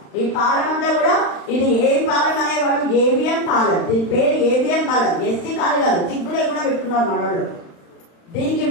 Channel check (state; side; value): late; right; 35 ms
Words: ఈ పాలెం అంతా కూడా ఇది ఏ పాలెం అనేవాడు? ఏబిఎం పాలెం. దీని పేరు ఏబిఎం పాలెం. ఎస్సీ కాదు కాదు, చిగ్గు లేకుండా పెట్టుకున్నారు మనోళ్ళు. దీనికి